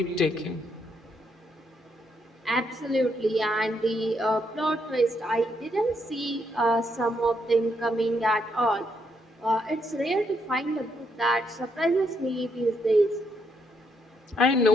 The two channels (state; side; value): normal; both; correlation 0.76